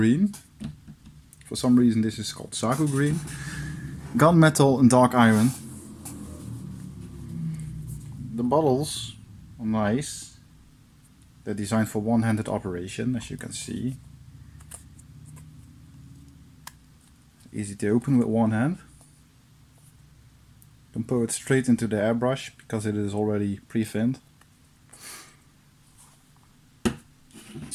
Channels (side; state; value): both; identical; correlation 1.00